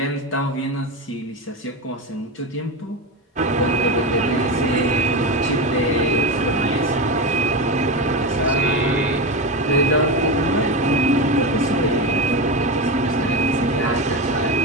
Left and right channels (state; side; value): normal; both; correlation 0.18